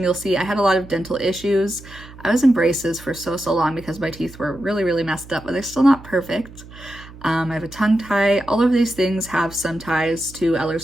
you'll see. I had a lot of dental issues. I was in braces for so long because my teeth were really messed up, but they're still not perfect. I have a tongue tie. All of these things have some ties to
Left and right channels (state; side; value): noise; right; hum, 18 dB below the sound